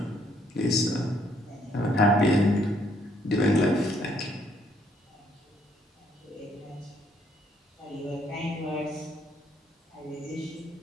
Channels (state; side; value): normal; both; correlation 0.68